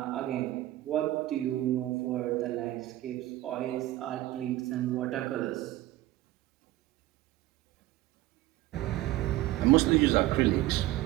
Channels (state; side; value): quieter; left; 16.1 dB